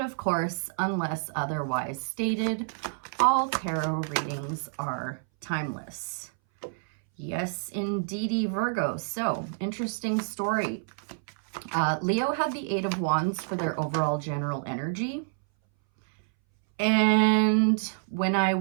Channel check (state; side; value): silent; left; 59 dB below the other